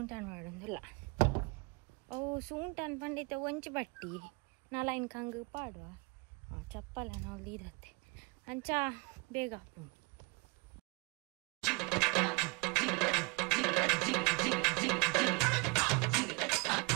ಮಾಡೋದಿಲ್ಲ ಅವು ಸೂಂಟನ್ ಪಂಡೈತೆ ಒಂಚು ಬಟ್ಟಿ ನಾಲೈನ್ ಕಂಗೆ ಪಾಡುವ ಚಪ್ಪಲ ನಾವು ಇದತ್ತೆ ಅಂಚ ಬೇಗ ಹಾಕು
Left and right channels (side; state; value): left; quieter; 29.7 dB